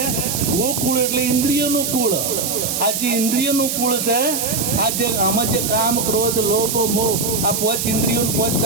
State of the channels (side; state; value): right; noise; hiss, 2 dB below the sound